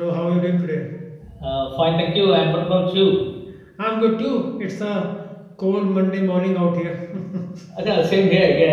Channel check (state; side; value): identical; both; correlation 1.00